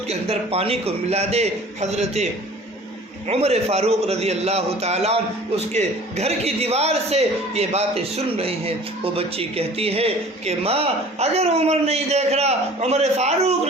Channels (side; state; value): both; normal; correlation 0.46